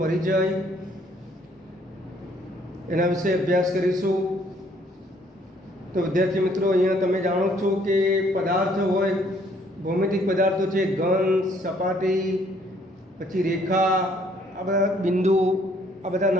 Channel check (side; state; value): both; normal; correlation 0.64